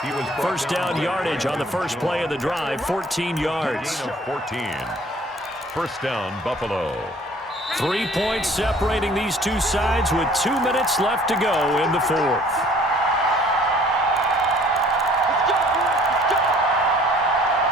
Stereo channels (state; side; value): normal; both; correlation 0.55